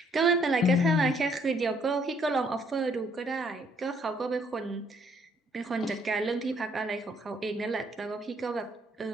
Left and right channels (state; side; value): normal; both; correlation 0.67